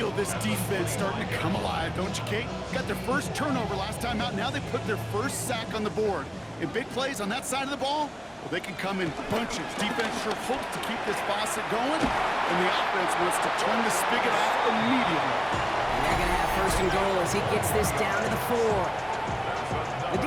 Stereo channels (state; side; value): identical; both; correlation 1.00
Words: this defense starting to come alive, don't you, Kate? Got their first turnover last time out. Now they put their first sack on the board. And big plays on that side of the ball, well, they can come in bunches. Defense sure hopes to keep this faucet going, and the offense wants to turn the spigot off immediately. And they're going to have 1st and goal as he gets this down to the 4. The